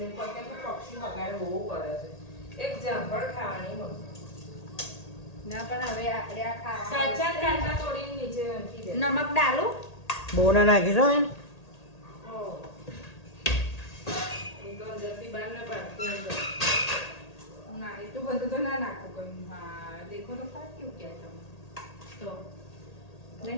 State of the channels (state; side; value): late; right; 1.8 ms